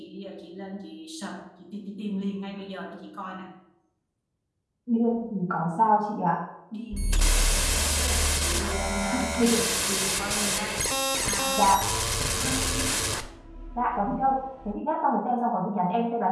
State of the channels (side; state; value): both; identical; correlation 1.00